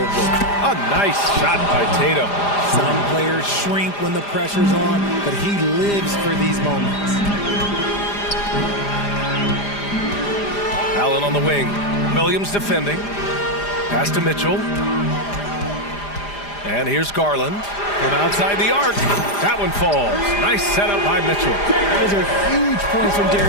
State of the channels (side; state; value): right; late; 4.9 ms